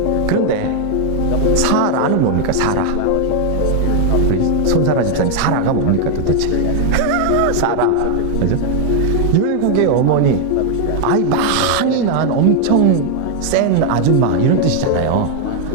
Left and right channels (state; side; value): different; both; correlation 0.00